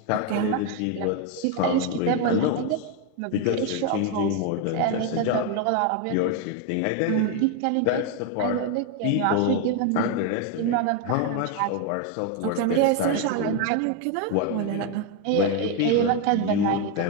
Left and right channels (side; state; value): both; different; correlation 0.01